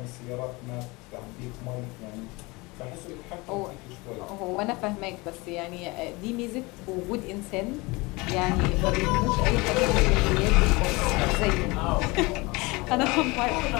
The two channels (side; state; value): right; quieter; 24.5 dB